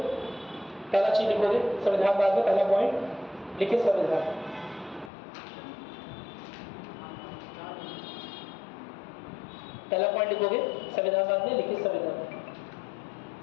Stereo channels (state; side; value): drops out; right; at 5.1 s